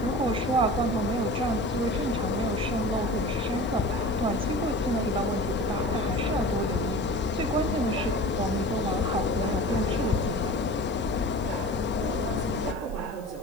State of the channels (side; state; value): left; noise; hiss, 25 dB below the sound